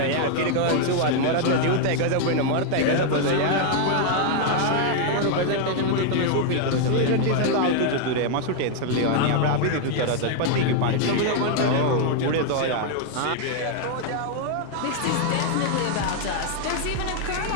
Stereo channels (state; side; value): different; both; correlation 0.00